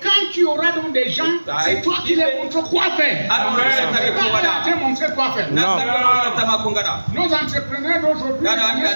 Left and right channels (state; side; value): inverted; both; correlation -1.00